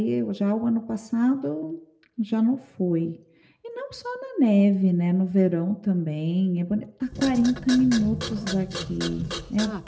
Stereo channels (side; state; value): both; identical; correlation 1.00